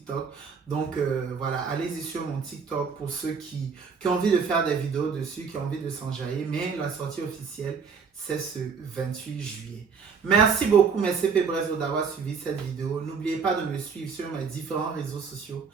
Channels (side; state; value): left; quieter; 5.8 dB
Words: Donc, voilà, allez-y sur mon TikTok pour ceux qui ont envie de faire des vidéos dessus, qui ont envie de s'enjailler. Mais la sortie officielle, c'est ce 28 juillet. Merci beaucoup, mes CP Brezo, d'avoir suivi cette vidéo. N'oubliez pas de me suivre sur mes différents réseaux sociaux.